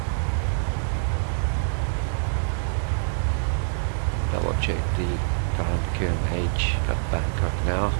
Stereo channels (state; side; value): silent; left; digital silence